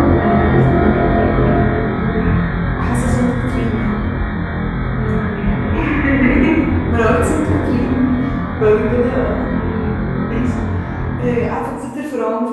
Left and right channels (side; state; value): both; identical; correlation 1.00